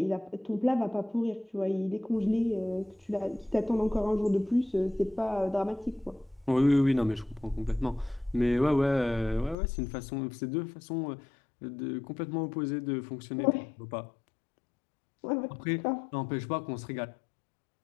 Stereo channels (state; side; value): drops out; right; at 9.6 s